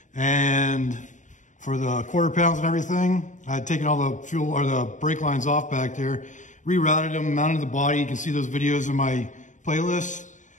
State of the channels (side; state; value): right; late; 0.36 ms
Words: and for the quarter pounds and everything, I had taken all the fuel or the brake lines off back there, rerouted them, mounted the body. You can see those videos in my playlist.